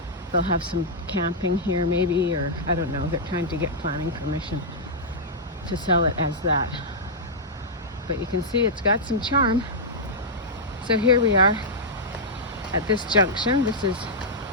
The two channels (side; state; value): both; normal; correlation -0.09